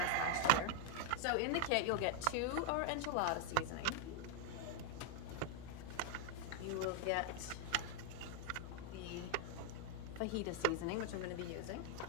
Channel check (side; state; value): both; different; correlation 0.00